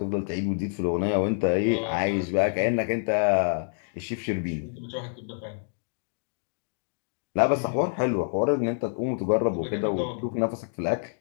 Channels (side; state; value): right; silent; digital silence